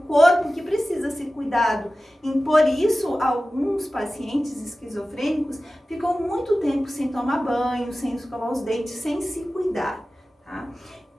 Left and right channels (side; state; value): both; normal; correlation 0.96